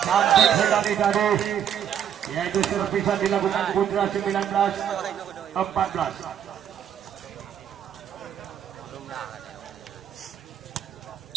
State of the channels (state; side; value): quieter; left; 9.3 dB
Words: Cantik sekali tadi yaitu servisan dilakukan Putra. 19-14